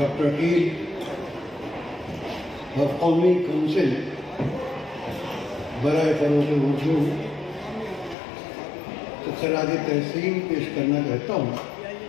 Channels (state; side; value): drops out; right; at 8.2 s